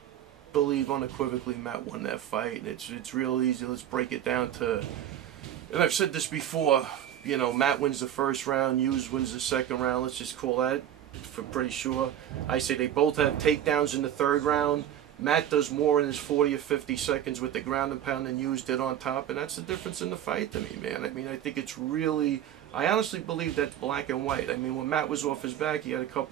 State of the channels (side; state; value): left; quieter; 10.8 dB